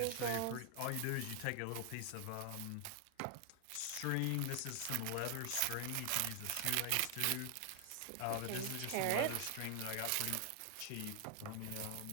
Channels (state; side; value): different; both; correlation 0.00